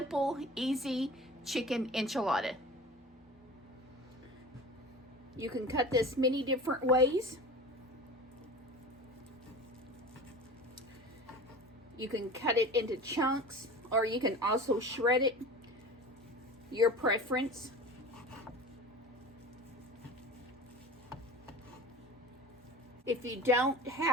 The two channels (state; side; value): normal; both; correlation 0.36